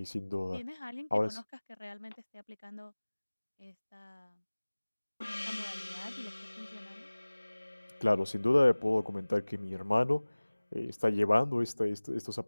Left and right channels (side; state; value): both; inverted; correlation -1.00